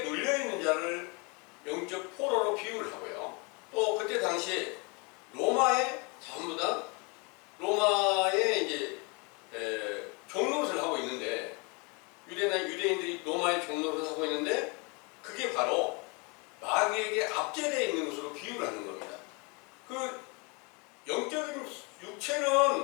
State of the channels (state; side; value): quieter; right; 30.7 dB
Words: 눌려있는 자를 영적 포로로 비유를 하고요. 또 그때 당시에 로마에 전부 다 로마에 이제 종노릇을 하고 있는데, 유대인들이 로마의 종노릇을 하고 있는데, 그게 바로 마귀에게 압제되어 있는 것으로 비유를 하는 겁니다. 그 영적인